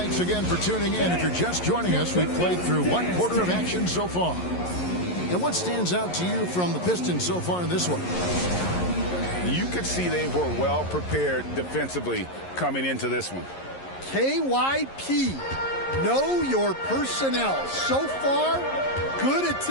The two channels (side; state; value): right; late; 11 ms